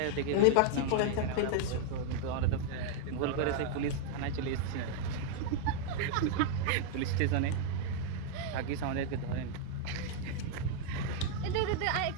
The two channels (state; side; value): different; both; correlation 0.00